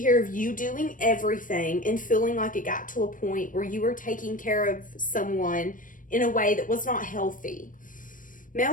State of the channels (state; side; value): late; right; 0.39 ms